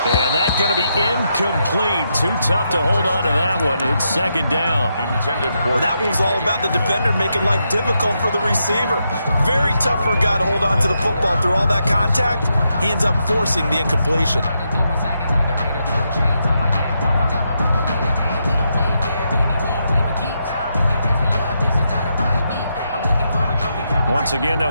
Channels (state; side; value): inverted; both; correlation -0.82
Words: And that's going to be incomplete. Too tough to hold on to that one. It's second down. Well, that one was all about the defender making life difficult for the receiver. Very tough for a guy to hold on to the football through all that contact. He ends up forcing the incompletion. Once again, they'll